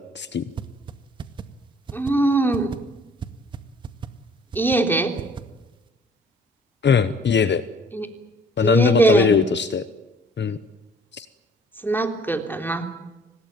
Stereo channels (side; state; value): both; normal; correlation 0.56